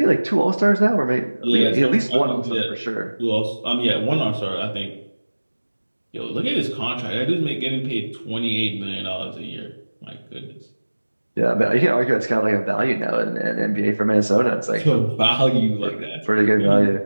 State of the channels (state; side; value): inverted; both; correlation -1.00